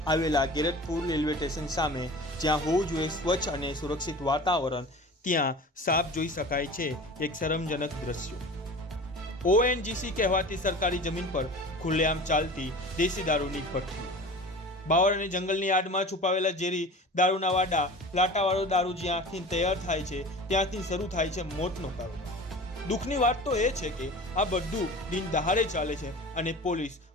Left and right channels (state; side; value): normal; both; correlation 0.37